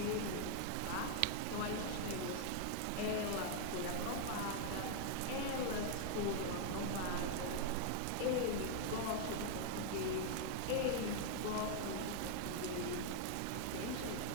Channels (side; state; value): both; different; correlation 0.00